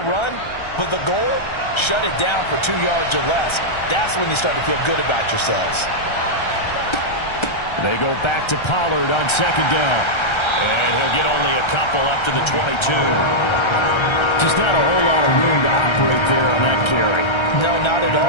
run, but the goal, shut it down for 2 yards or less. That's when you start to feel good about yourselves. They go back to Pollard on second down. And he'll get only a couple up to the 22. Just not a whole lot of room to operate there on that carry. No, not at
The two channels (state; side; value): late; right; 1.3 ms